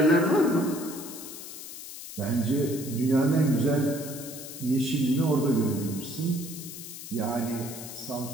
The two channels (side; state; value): left; noise; hiss, 11 dB below the sound